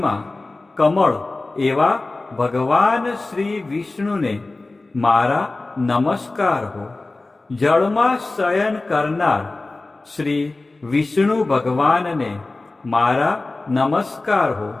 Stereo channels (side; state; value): right; quieter; 3.2 dB